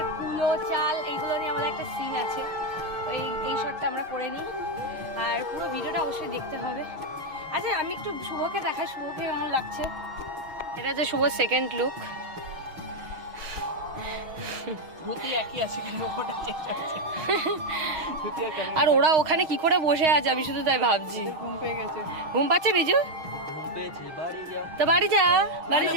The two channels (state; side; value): late; left; 6.4 ms